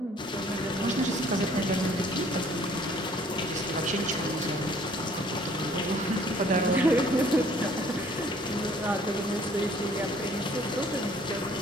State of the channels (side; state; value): both; normal; correlation 0.57